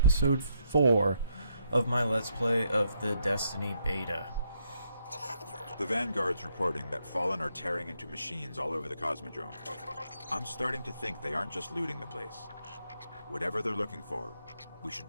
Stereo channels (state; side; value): inverted; both; correlation -0.76